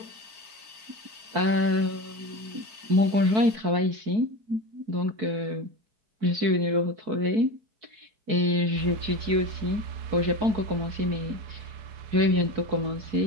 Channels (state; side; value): late; left; 4.6 ms